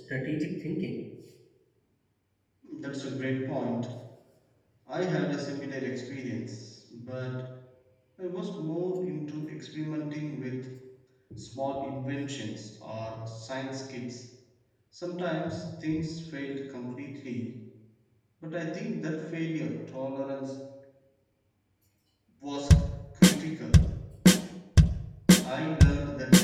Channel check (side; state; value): both; identical; correlation 1.00